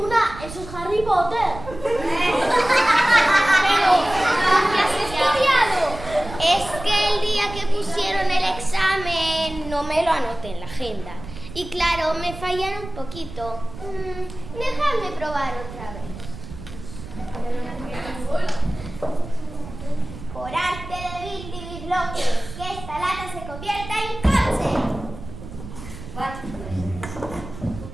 Eso es Harry Potter. Pero, ¿qué has estudiado? Es que el día que pusieron el examen no me lo anoté en la agenda. Y claro, me fallaron un poquito. Déjame probar otra vez. Por arte de Billy que esta lata se convierta en coche.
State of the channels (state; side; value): noise; right; rumble, 13 dB below the sound